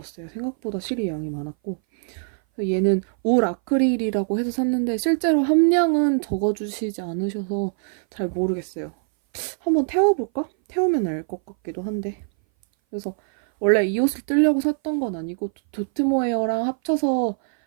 생각보다 실이 양이 많았고 얘는 울 아크릴이라고 해서 샀는데 실제로 함량은 적어주시지 않으셔서 잘 모르겠어요. 한번 태워볼까? 태우면 알 것 같기도 한데 그래서 원래 이 옷을 뜨려고 샀던 건 아니고 도트모헤어랑 합쳐서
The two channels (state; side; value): silent; left; 59 dB below the other